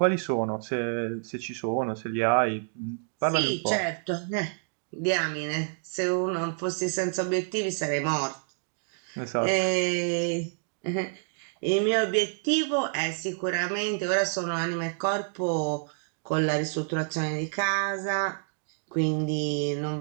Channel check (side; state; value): left; silent; digital silence